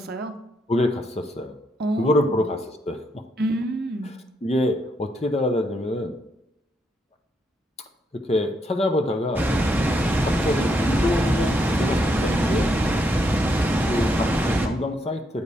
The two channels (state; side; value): normal; both; correlation 0.77